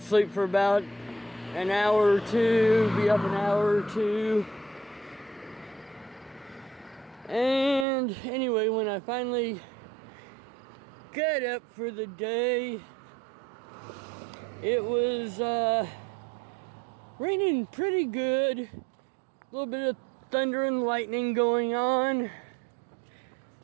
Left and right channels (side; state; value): left; drops out; at 7.9 s